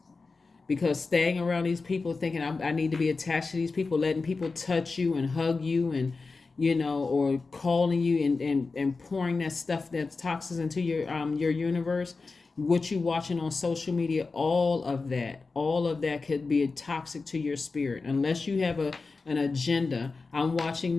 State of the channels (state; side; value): quieter; right; 4.1 dB